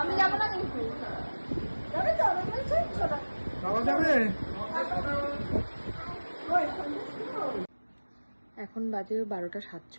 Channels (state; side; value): inverted; both; correlation -1.00